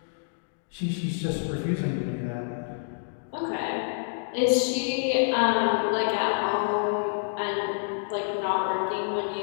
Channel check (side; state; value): right; silent; digital silence